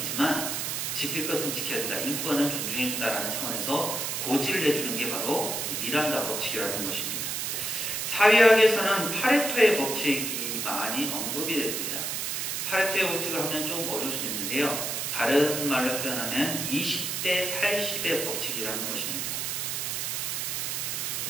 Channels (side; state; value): right; noise; hiss, 2 dB below the sound